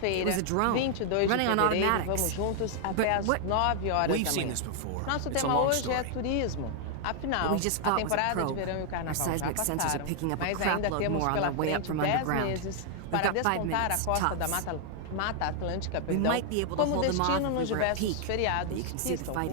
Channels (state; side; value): different; both; correlation -0.01